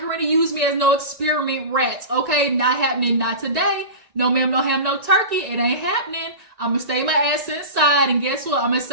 going to use me as no experiment rats. Okay, not happening, not today. No ma'am, no ham, no turkey. It ain't happening. I'm gonna stay my ass inside, and guess what? I'm gonna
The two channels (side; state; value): left; late; 1.9 ms